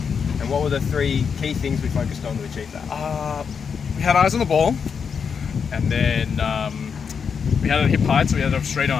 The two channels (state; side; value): quieter; right; 6.4 dB